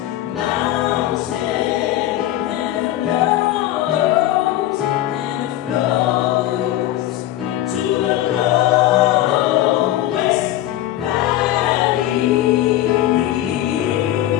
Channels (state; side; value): quieter; right; 13.9 dB